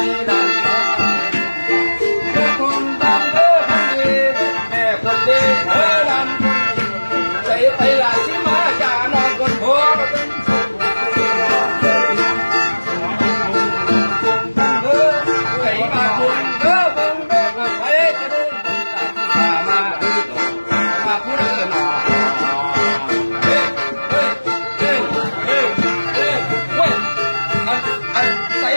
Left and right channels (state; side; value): inverted; both; correlation -1.00